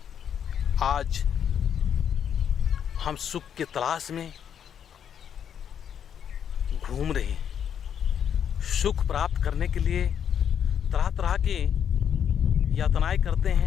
आज हम सुख के तलाश में घूम रहे हैं। सुख प्राप्त करने के लिए तरह तरह के यातनाएं करते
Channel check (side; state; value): right; quieter; 8.5 dB